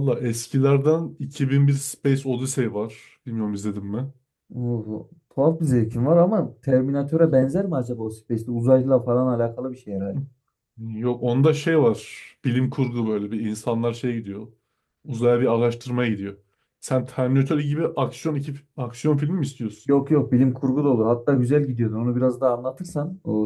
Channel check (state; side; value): identical; both; correlation 1.00